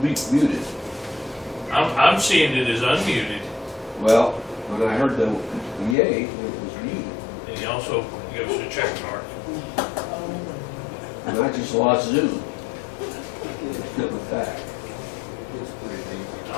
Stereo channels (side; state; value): right; drops out; at 6.0 s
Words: muted? I'm seeing it as unmuted, Well, when I heard the yay, it was muted. and he also gives us a check mark. And I just lost Zoom. Coming back.